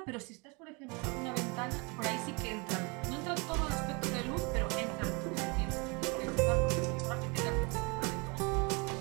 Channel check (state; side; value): quieter; left; 30.0 dB